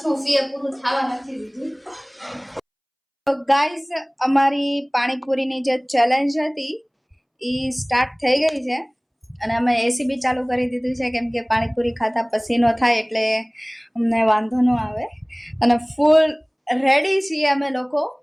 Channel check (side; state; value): both; identical; correlation 1.00